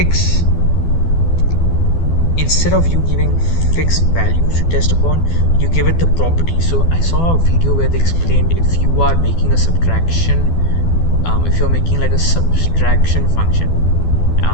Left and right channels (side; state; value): right; late; 12 ms